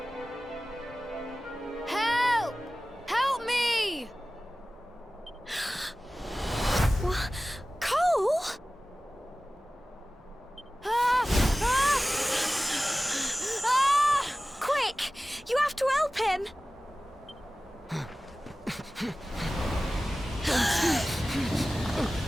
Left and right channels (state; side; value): normal; both; correlation 0.97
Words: Help! Help me! What? Cole? Ah! Ah! Ah! Quick! You have to help him!